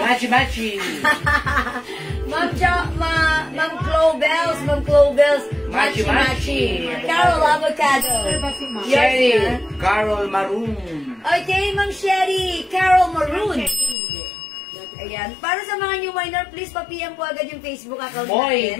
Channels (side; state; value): right; drops out; at 14.0 s